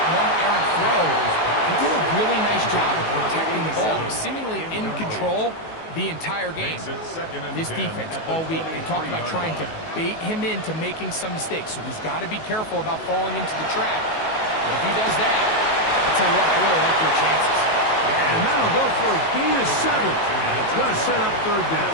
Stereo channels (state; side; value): late; right; 19 ms